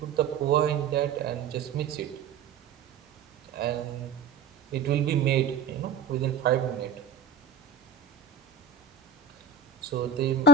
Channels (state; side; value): quieter; left; 6.5 dB